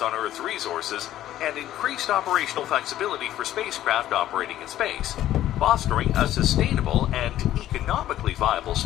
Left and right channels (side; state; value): right; quieter; 13.0 dB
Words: Earth's resources, and increased operational flexibility for spacecraft operating in space, fostering a sustainable and economically viable